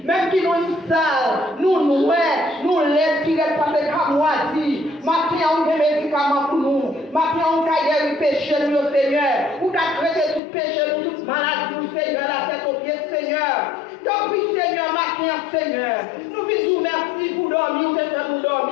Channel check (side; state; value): right; drops out; at 10.4 s